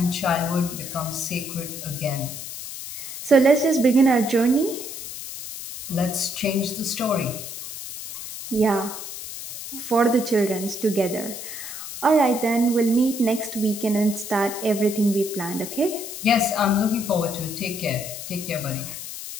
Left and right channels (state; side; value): noise; left; hiss, 9 dB below the sound